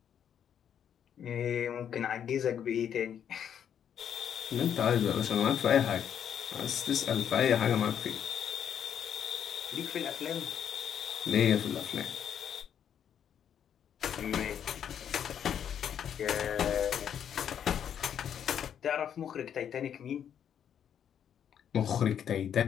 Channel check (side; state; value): right; quieter; 8.9 dB